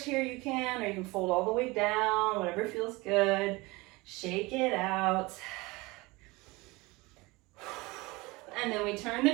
here, you can, or you can fold all the way down, whatever feels good. Shake it out. And then we turn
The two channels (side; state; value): left; quieter; 23.2 dB